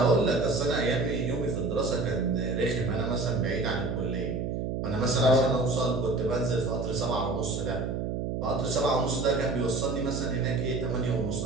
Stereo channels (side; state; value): right; noise; hum, 2 dB below the sound